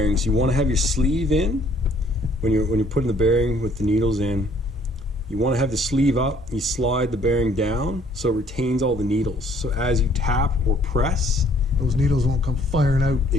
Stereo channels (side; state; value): both; normal; correlation 0.61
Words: you want to have your sleeve in. When you're putting the bearing with the needles in, you want to have the sleeve up. You slide the bearing down so it retains all the needles. So as you tap or press, Those needles won't come firing out.